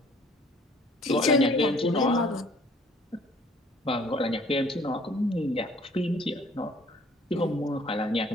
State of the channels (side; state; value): both; normal; correlation 0.55